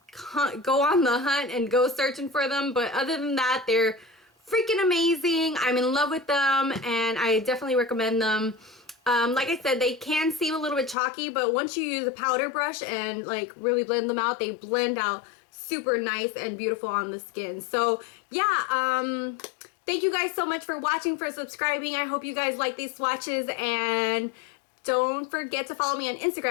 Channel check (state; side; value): drops out; right; at 11.0 s